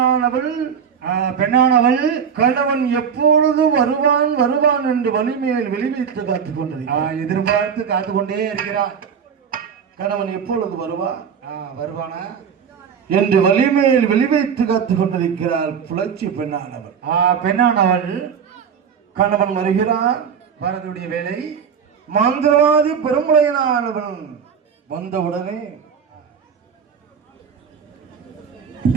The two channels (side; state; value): left; quieter; 7.1 dB